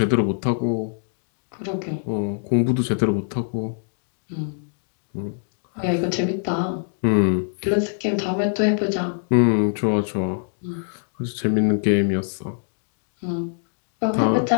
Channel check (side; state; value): right; silent; digital silence